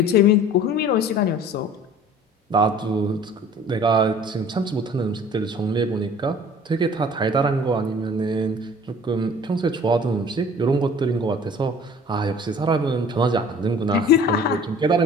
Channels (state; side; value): normal; both; correlation 0.48